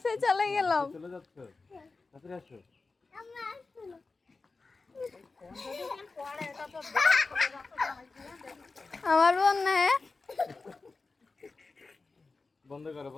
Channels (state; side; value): quieter; right; 3.9 dB